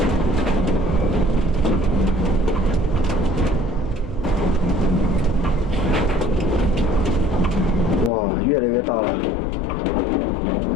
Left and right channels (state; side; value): drops out; right; at 8.1 s